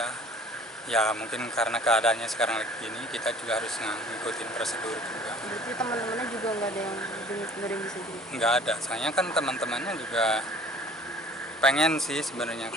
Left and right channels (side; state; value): both; normal; correlation 0.50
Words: ya mungkin karena keadaannya sekarang lagi gini, kita juga harus ngikutin prosedur juga. Berarti teman-temannya juga nggak ada yang bisa jadi? Nggak ada, soalnya kan teman-temannya juga pengen sih sebenarnya,